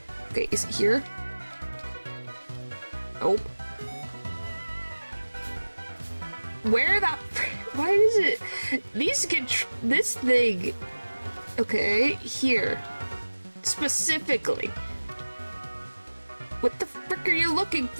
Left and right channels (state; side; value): inverted; both; correlation -1.00